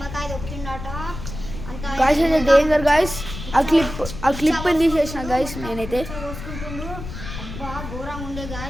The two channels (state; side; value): noise; left; rumble, 9 dB below the sound